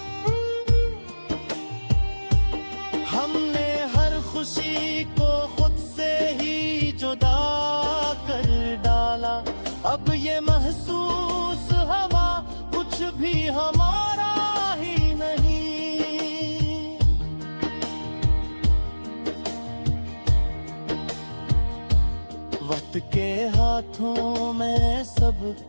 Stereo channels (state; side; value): inverted; both; correlation -1.00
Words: हमने हर खुशी को खुद से ही जुदा कर डाला, अब ये महसूस हवा कुछ भी हमारा ही नहीं। वक्त के हाथों में सब